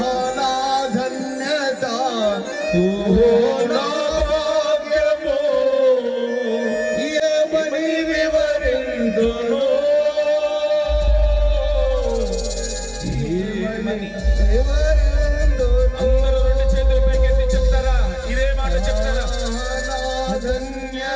ఆహనాధన్యత ఓహో నా భాగ్యము ఏమని వివరించును అందరూ రెండు చేతులు పైకెత్తి చెప్తారా ఇదే మాట చెప్తారా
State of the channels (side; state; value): both; identical; correlation 1.00